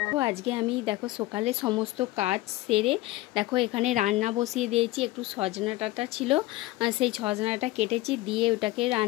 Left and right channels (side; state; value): right; quieter; 18.2 dB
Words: আজকে আমি সকালে সমস্ত কাজ সেরে এখানে রান্না বসিয়ে দিয়েছি। একটু সজনা ডাঁটা ছিল, সেই সজনাটা কেটেছি, দিয়ে ওটাকে